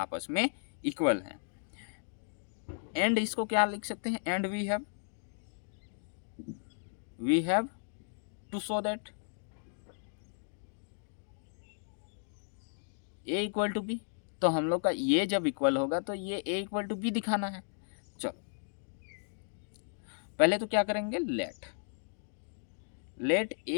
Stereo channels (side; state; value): right; silent; digital silence